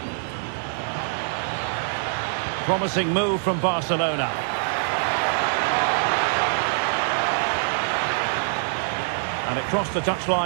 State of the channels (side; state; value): left; silent; digital silence